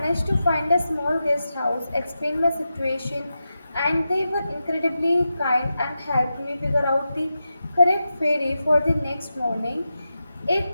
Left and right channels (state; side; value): inverted; both; correlation -0.90